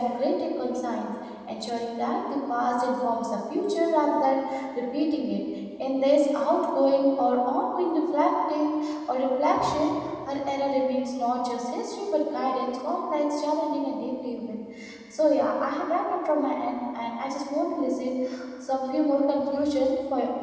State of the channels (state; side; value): identical; both; correlation 1.00